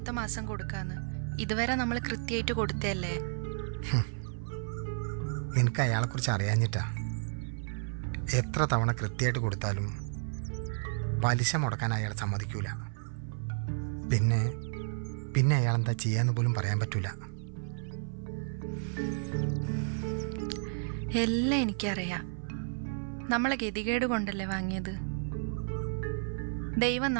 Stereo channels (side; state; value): left; silent; 55 dB below the other